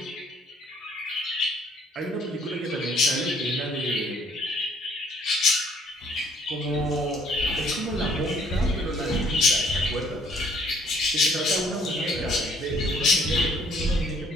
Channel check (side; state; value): both; normal; correlation 0.62